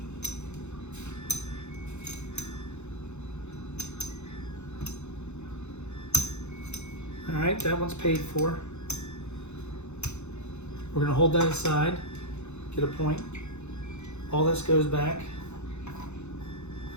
All right, that one's paid for. We're gonna hold that aside, get a point. All this goes back.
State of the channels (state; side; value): late; right; 0.82 ms